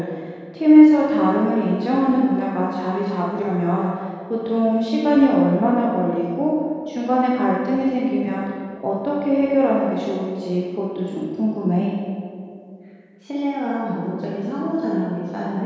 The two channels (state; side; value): identical; both; correlation 1.00